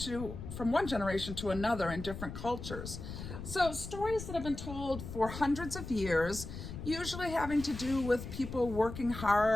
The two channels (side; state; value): left; noise; rumble, 9 dB below the sound